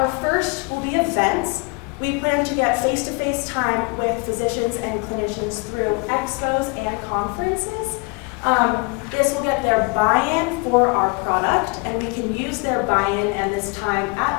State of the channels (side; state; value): right; quieter; 30.3 dB